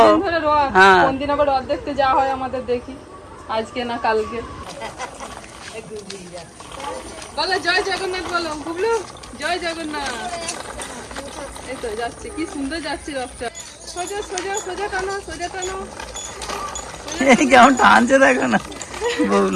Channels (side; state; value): both; identical; correlation 1.00